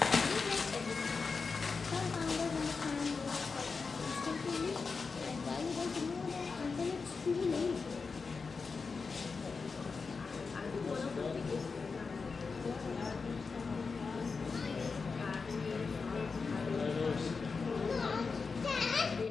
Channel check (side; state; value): right; quieter; 4.8 dB